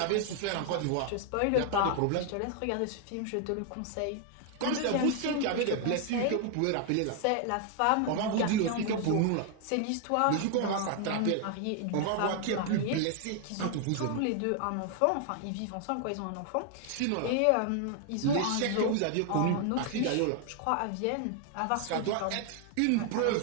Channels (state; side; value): different; both; correlation 0.00